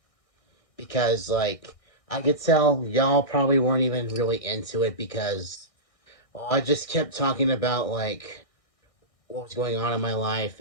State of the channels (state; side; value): late; right; 1.6 ms